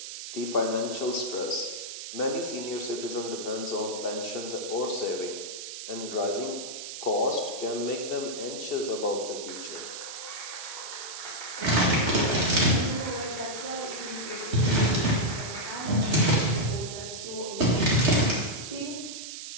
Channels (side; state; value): right; noise; hiss, 9 dB below the sound